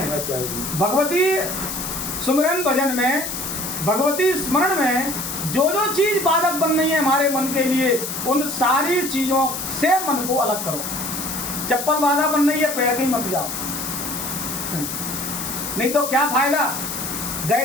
भगवती सुमरन भजन में, भगवती स्मरण में जो चीज बाधक बन रही है हमारे मन के लिए, उन सारी चीजों से मन को अलग करो। चप्पल बाधा बन रही है, पैर के ही मत जाओ, नहीं तो क्या फायदा।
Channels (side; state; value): left; noise; hiss, 5 dB below the sound